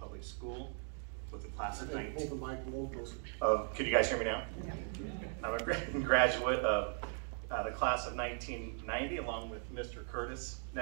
School with a class of 19. Hold the mic a little closer. Could you guys hear me now? Yeah. I'm a graduate of the class of 1990, along with Mr. Curtis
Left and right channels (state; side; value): silent; left; 52 dB below the other